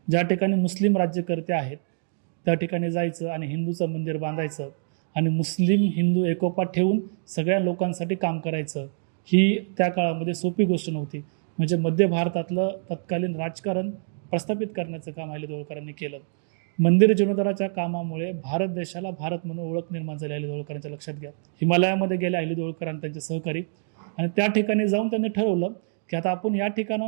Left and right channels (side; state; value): left; silent; digital silence